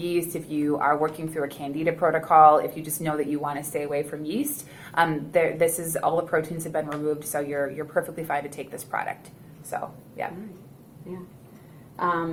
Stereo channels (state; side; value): identical; both; correlation 1.00